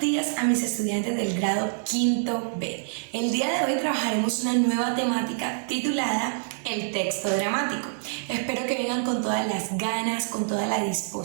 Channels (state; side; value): silent; left; digital silence